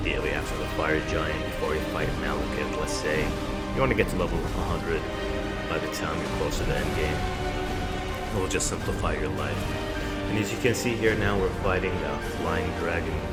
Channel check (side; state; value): both; identical; correlation 1.00